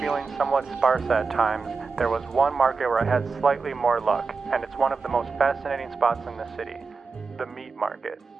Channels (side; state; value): left; quieter; 4.6 dB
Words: somewhat sparse at times, there was one market where I had slightly more luck, and it's one of the most fascinating spots in the city, the meat market,